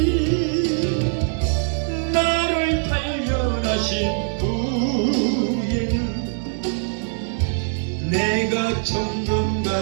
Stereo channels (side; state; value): left; silent; digital silence